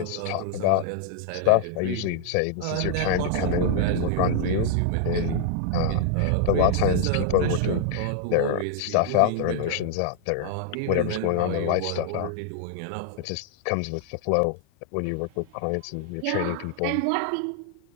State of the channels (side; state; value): both; different; correlation -0.01